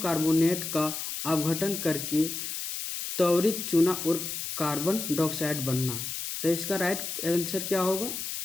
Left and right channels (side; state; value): left; noise; hiss, 5 dB below the sound